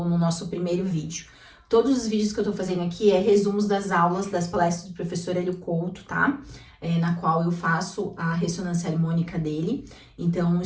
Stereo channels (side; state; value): both; identical; correlation 1.00